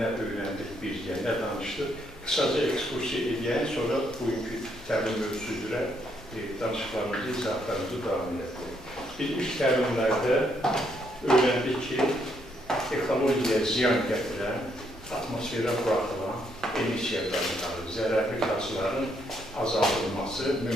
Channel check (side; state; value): both; normal; correlation 0.73